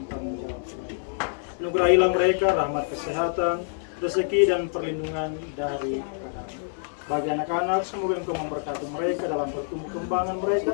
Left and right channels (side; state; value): right; silent; digital silence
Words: tanggung jawab. Anugerahilah mereka rahmat kesehatan, rezeki, dan perlindungan dari bagi anak-anak, semoga Engkau memberkati mereka dalam pertumbuh kembangan mereka,